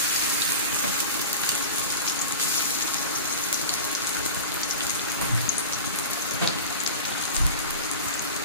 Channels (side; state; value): both; inverted; correlation -0.32